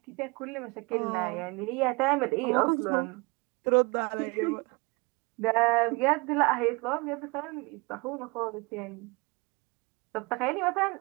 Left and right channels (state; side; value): quieter; left; 27.7 dB